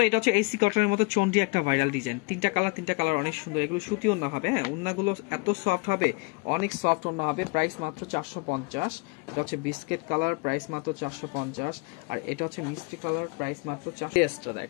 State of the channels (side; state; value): right; quieter; 30.1 dB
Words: এটা হচ্ছে এসি কটনের মতো চন্ডি একটা ভাইরাল ডিজাইন। 3টা কালার অনেক সুন্দর। এগুলো সুতি ওন্না হবে, হ্যাঁ ওন্নাগুলো এত সফট হবে, অনেক সফট ওন্না হবে। প্রাইস মাত্র 450। এটা হচ্ছে বিস্কিট কালার, প্রাইস মাত্র 450। আর এটা হচ্ছে মিষ্টি কালার, প্রাইস মাত্র 400।